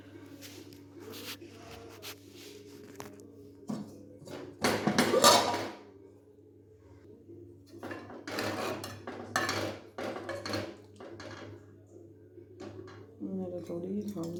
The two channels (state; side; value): identical; both; correlation 1.00